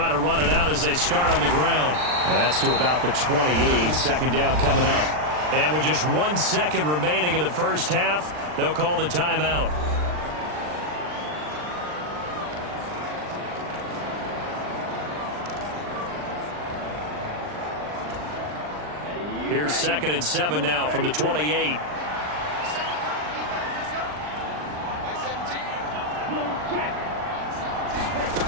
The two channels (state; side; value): late; left; 39 ms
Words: to run it out as they start on the ground. That's to about the 28. 2nd down coming up. And with just 1 second remaining in the first half, they'll call the timeout. Here's 2nd and 7 now from the 28.